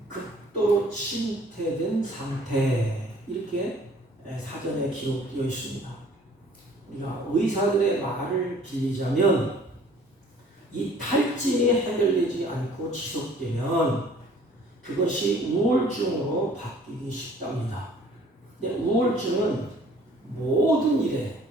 극도로 침태된 상태, 이렇게 사전에 기록되어 있습니다. 우리가 의사들의 말을 빌리자면 이 탈진이 해결되지 않고 지속되면 그것이 우울증으로 바뀌기 쉽답니다. 근데 우울증은 모든 일에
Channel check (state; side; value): normal; both; correlation 0.54